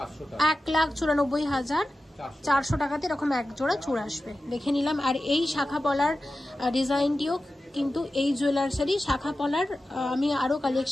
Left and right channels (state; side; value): normal; both; correlation 0.94